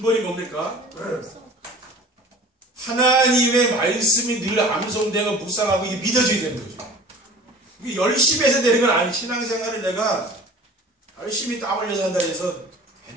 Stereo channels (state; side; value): normal; both; correlation 0.43